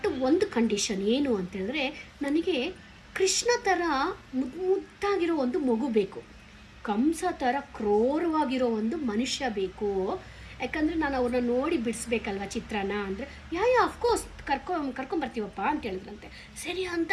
ಒಂದು ಕಂಡೀಷನ್ ಏನು ಅಂತ ಹೇಳಿದ್ರೆ, ನನಗೆ ಕೃಷ್ಣ ತರ ಮುದ್ದಾಗಿರೋ ಒಂದು ಮಗು ಬೇಕು, ಕಂಸ ತರ ಕ್ರೂರವಾಗಿರೋ ಒಂದು ಮನುಷ್ಯ ಬೇಕು. ಯಾಕಂದ್ರೆ ನಾನು ಅವ್ರನ್ನ ನೋಡಿ ಬಿಡಿಸ್ಬೇಕಲ್ವಾ ಚಿತ್ರನ. ಅಂದ್ರೆ ಅಫ್ಕೋರ್ಸ್ ಕರ್ಕೊಂಡ್ ಬರ್ತೀವಪ್ಪ ಅಂತ ಹೇಳಿದ್ರಂತೆ. ಸರಿ ಅಂತ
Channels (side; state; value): both; identical; correlation 1.00